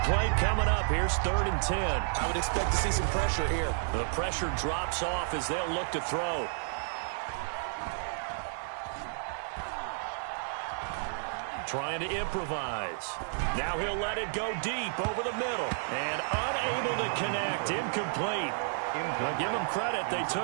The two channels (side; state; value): left; silent; digital silence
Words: play coming up. Here's 3rd and 10. I would expect to see some pressure here. The pressure drops off as they'll look to throw. Trying to improvise. Now he'll let it go deep over the middle. And unable to connect. Incomplete. I'll give them credit. They